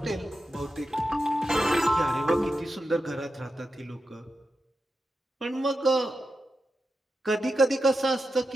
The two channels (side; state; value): both; normal; correlation 0.89